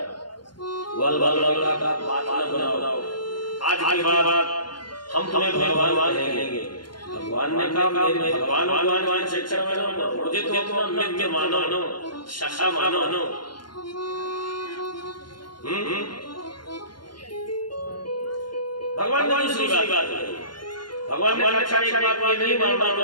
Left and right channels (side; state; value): right; late; 0.71 ms